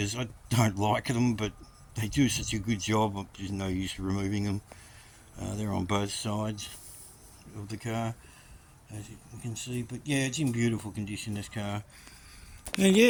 I don't like them, but they do such a good job. There's no use removing them. They're on both sides of the car, as you can see. But yeah, it's in beautiful condition, this car. And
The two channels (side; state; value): both; identical; correlation 1.00